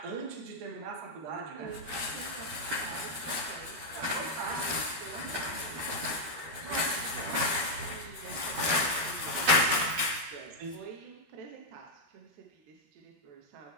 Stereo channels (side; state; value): left; late; 13 ms